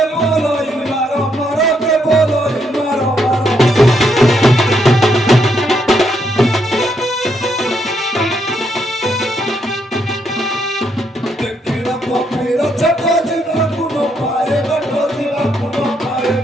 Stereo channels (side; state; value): both; normal; correlation 0.76